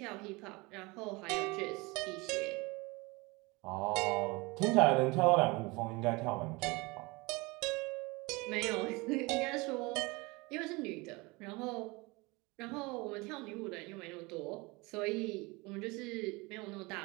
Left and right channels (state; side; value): quieter; left; 25.0 dB